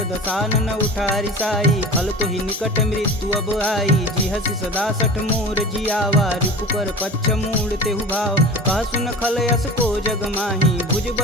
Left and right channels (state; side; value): normal; both; correlation 0.35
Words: दसानन उठारी साई खल तो ही निकट मृत्यु अब आई जी हसी सदा सठ मोर जियावा रिपु कर पच्छ मूड तेहु भाव कह सुन खल यस को जग माही भुज